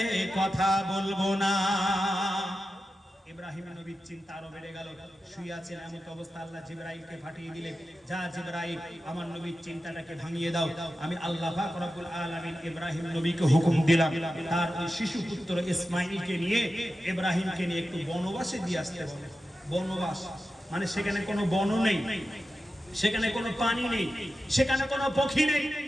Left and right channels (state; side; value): normal; both; correlation 0.92